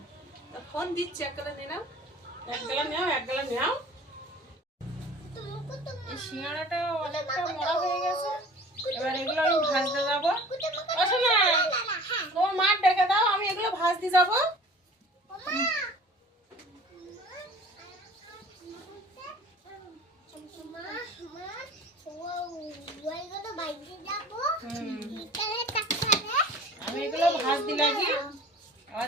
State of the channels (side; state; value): both; normal; correlation 0.45